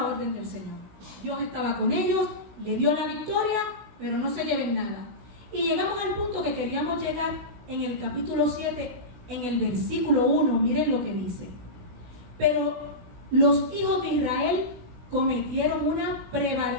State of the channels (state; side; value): late; left; 16 ms